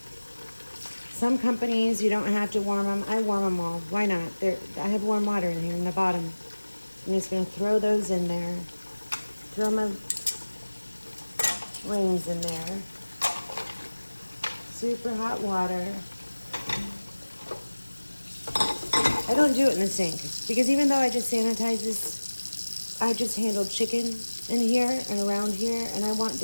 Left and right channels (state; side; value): inverted; both; correlation -1.00